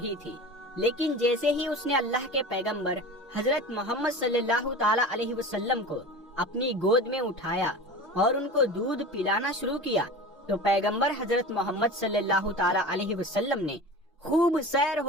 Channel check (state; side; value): normal; both; correlation 0.34